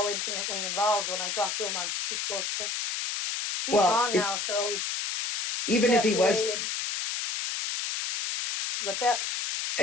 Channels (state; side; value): noise; left; hiss, 2 dB below the sound